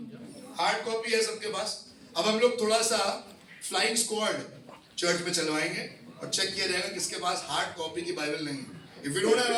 hard copy है सबके पास। अब हम लोग थोड़ा सा फ्लाइंग स्क्वाड चर्च में चलवाएंगे और चेक किया जाएगा किसके पास हार्ड कॉपी की बाइबल नहीं है। If you don't have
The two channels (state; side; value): identical; both; correlation 1.00